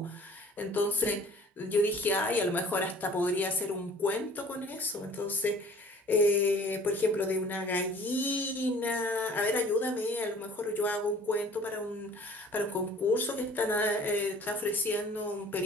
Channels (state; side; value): normal; both; correlation 0.51